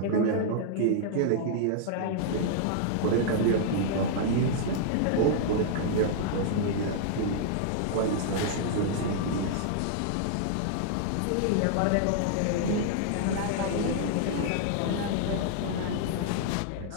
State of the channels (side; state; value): both; different; correlation -0.01